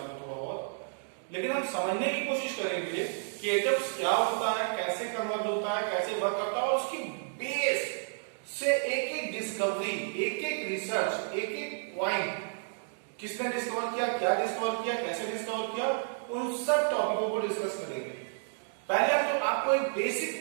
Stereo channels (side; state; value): left; silent; digital silence